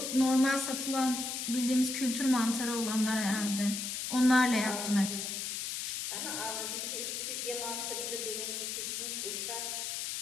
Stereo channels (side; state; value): left; noise; hiss, 3 dB below the sound